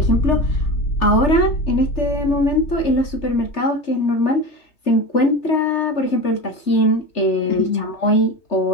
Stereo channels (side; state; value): right; late; 3.4 ms